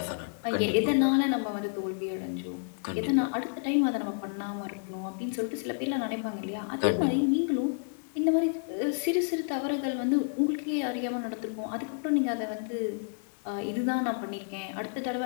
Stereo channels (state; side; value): silent; right; 55 dB below the other